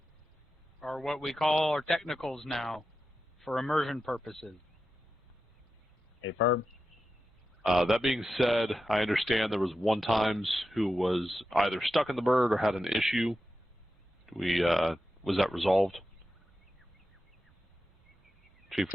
are what we call our technicals now for immersion purposes. Hey, firm. That being said, I understand there was one times who was either stuck in the bird or had an issue. Was that resolved? Chief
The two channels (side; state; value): both; normal; correlation 0.91